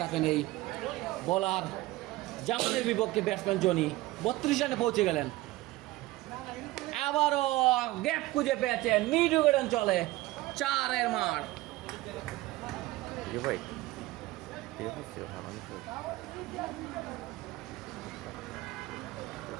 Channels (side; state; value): left; quieter; 18.5 dB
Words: থাকেন এই বোলার জামানের বিপক্ষে ব্যাটসম্যান জনি। 32 রানে পৌঁছে গেলেন। আবারও গ্যাপ খুঁজে পেয়েছেন, মিড উইকেট চলে 4-এর মার। ভাই ঠিক আছে,